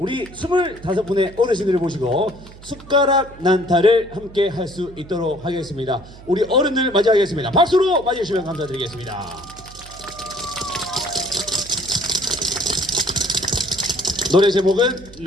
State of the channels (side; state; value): right; noise; hum, 19 dB below the sound